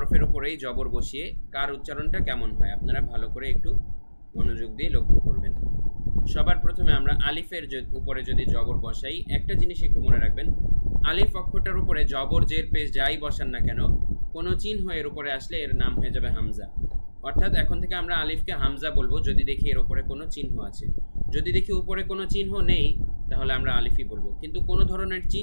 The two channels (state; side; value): inverted; both; correlation -1.00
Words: উপরেই জবর বসিয়ে কার উচ্চারণটা কেমন হয়। আপনারা ভালো করে একটু মনোযোগ দিয়ে লক্ষ্য করবেন। সবার প্রথমে আমরা আলিফের উপরে যদি জবর বসাই, একটা জিনিস একটু মনে রাখবেন, আলিফ অক্ষরটার উপরে জবর জের পেশ যাই বসান না কেন, কোনো চিহ্ন এর উপরে আসলে এর নাম হয়ে যাবে হামজা। অর্থাৎ এখন থেকে আমরা আলিফকে হামজা বলবো যদি দেখি এর উপরে কোনো চিহ্ন আছে। যদি দেখি উপরে কোনো চিহ্ন নেই তাহলে আমরা আলিফই বলবো। কিন্তু কোনো ধরনের